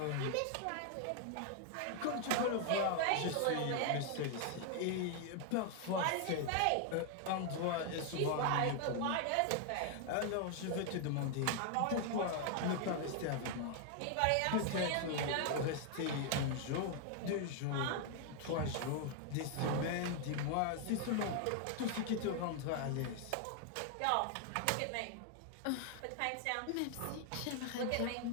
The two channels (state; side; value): different; both; correlation 0.00